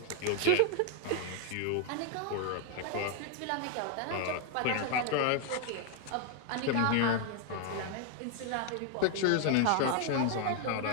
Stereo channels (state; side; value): different; both; correlation 0.00